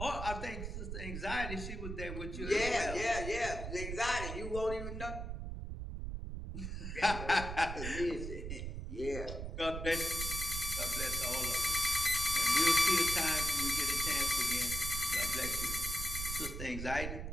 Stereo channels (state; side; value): noise; right; rumble, 5 dB below the sound